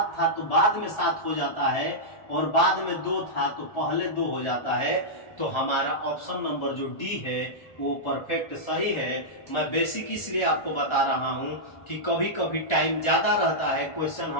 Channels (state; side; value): late; right; 1.3 ms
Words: था तो बाद में 7 हो जाता है, और बाद में 2 था तो पहले 2 हो जाता है। तो हमारा ऑप्शन नंबर जो डी है वो परफेक्ट सही है। मैं बेसिक इसलिए आपको बता रहा हूं कि कभी कभी टाइम ज्यादा रहता है, क्वेश्चन